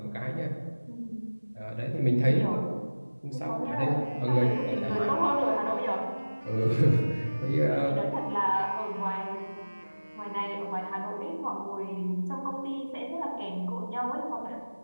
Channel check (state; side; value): inverted; both; correlation -1.00